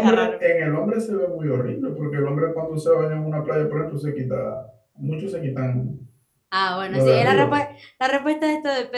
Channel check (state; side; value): identical; both; correlation 1.00